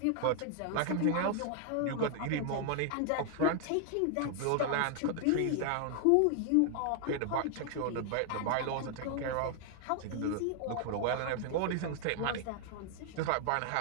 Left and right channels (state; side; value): different; both; correlation 0.00